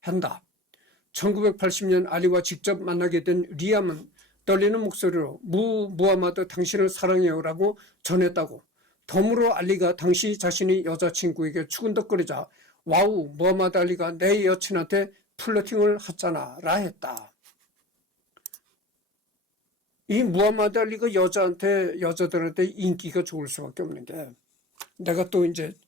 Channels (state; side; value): normal; both; correlation 0.37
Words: 1980년 알리와 직접 만나게 된 리암은 떨리는 목소리로 무하마드 당신을 사랑해요라고 전했다고. 덤으로 알리가 당시 자신이 여자친구에게 추근덕거리자 와우 무하마드 알리가 내 여친한테 플러팅을 했잖아 라 했다. 이 무하마드 알리가 여자들한테 인기가 좋을 수밖에 없는 게, 내가 또 이제